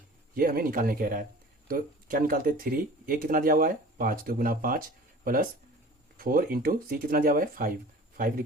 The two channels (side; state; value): both; normal; correlation 0.43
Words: ये हमें निकालने कह रहा है। तो क्या निकालते? 3a कितना दिया हुआ है? 5, तो गुना 5 प्लस 4 इंटू सी कितना दिया हुआ है? 5